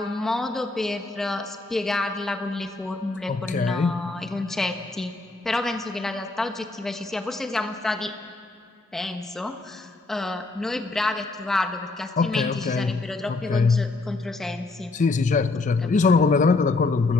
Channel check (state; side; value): quieter; right; 3.4 dB